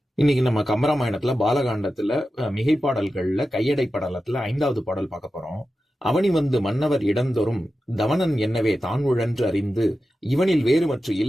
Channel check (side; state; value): both; normal; correlation 0.92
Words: இன்னைக்கு நம்ம கம்பராமாயணத்துல பாலகாண்டத்துல மிகைப்பாடல்கள்ல கையடை படலத்துல 5வது பாடல் பார்க்க போறோம். அவனி வந்து மன்னவர் இடந்தொறும் தவனன் என்னவே தான் உழன்று அறிந்து இவனில் வேறுமற்று